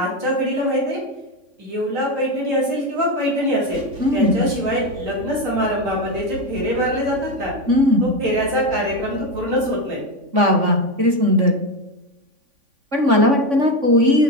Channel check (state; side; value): late; left; 3.5 ms